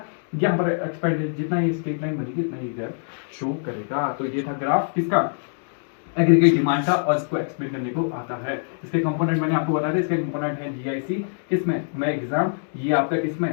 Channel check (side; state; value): right; silent; digital silence